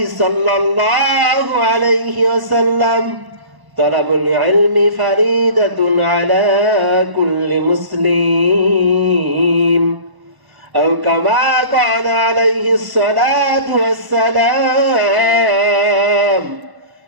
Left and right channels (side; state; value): left; late; 1.0 ms